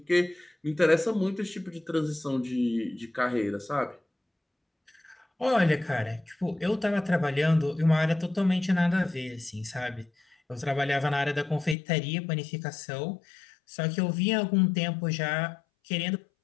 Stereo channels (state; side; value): drops out; right; at 11.8 s